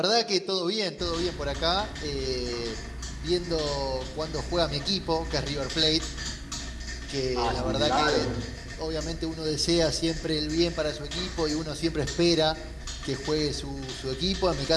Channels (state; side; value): identical; both; correlation 1.00